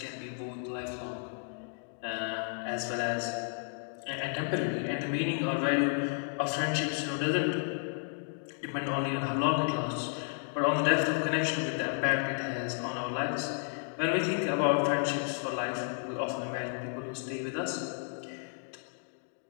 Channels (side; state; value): right; silent; 56 dB below the other